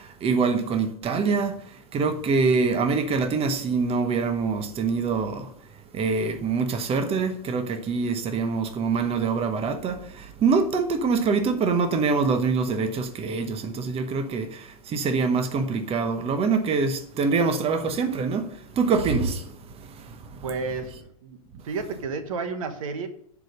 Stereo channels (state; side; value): quieter; left; 4.3 dB